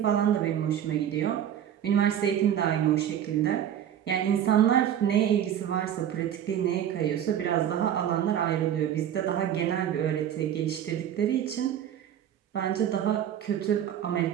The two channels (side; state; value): left; quieter; 10.1 dB